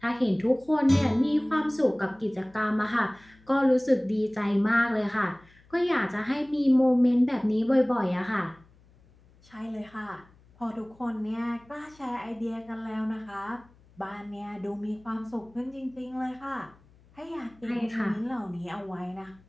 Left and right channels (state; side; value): noise; left; hum, 28 dB below the sound